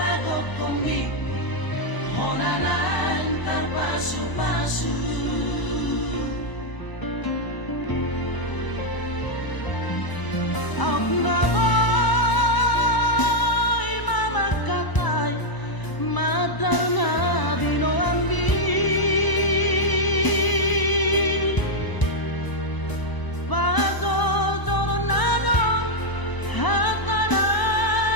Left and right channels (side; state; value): right; late; 1.0 ms